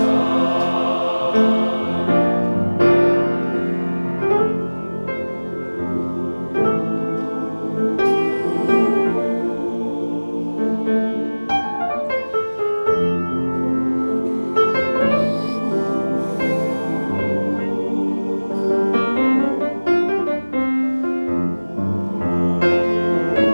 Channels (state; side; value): inverted; both; correlation -1.00